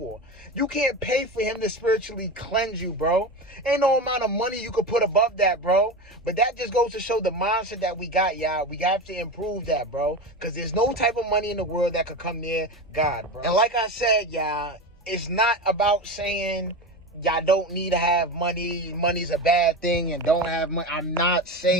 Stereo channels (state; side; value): normal; both; correlation 0.23